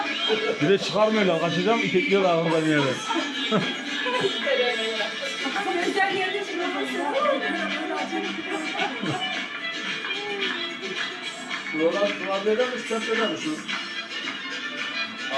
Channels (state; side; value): identical; both; correlation 1.00